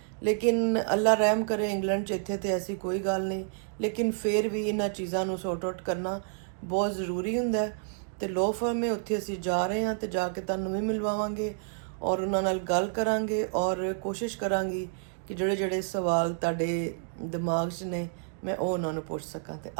ਲੇਕਿਨ ਅੱਲਾ ਰਹਿਮ ਕਰੇ, ਇੰਗਲੈਂਡ 'ਚ ਇੱਥੇ ਤੇ ਐਸੀ ਕੋਈ ਗੱਲ ਨਹੀਂ, ਲੇਕਿਨ ਫਿਰ ਵੀ ਇਹਨਾਂ ਚੀਜ਼ਾਂ ਨੂੰ ਸੌਰਟ ਆਊਟ ਕਰਨਾ ਬਹੁਤ ਜ਼ਰੂਰੀ ਹੁੰਦਾ ਹੈ। ਤੇ ਲੋ ਫਰਮ ਹੈ ਉੱਥੇ ਅਸੀਂ ਜਾ ਰਹੇ ਹਾਂ, ਤੇ ਜਾ ਕੇ ਤੁਹਾਨੂੰ ਵੀ ਮਿਲਵਾਵਾਂਗੇ ਔਰ ਉਹਨਾਂ ਨਾਲ ਗੱਲ ਕਰਾਂਗੇ ਔਰ ਕੋਸ਼ਿਸ਼ ਕਰਾਂਗੀ ਕਿ ਜਿਹੜੇ ਜਿਹੜੇ ਸਵਾਲ ਤੁਹਾਡੇ ਦਿਮਾਗ 'ਚ ਨੇ ਮੈਂ ਉਹ ਉਹਨਾਂ ਨੂੰ ਪੁੱਛ ਸਕਾਂ। ਤੇ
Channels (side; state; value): left; silent; digital silence